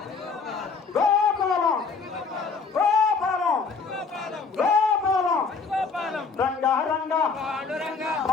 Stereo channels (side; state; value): right; quieter; 4.8 dB